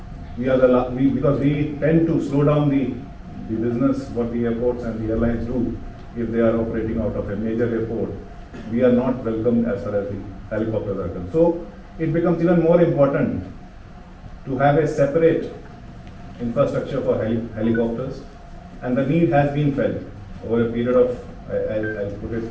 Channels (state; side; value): identical; both; correlation 1.00